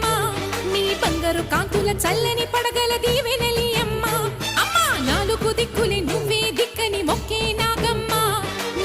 నీ బంగారు కాంతుల చల్లని పడగల దీవెనలి అమ్మ అమ్మా నాలుగు దిక్కులే నువ్వే దిక్కని మొక్కే నాగమ్మ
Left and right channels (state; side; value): identical; both; correlation 1.00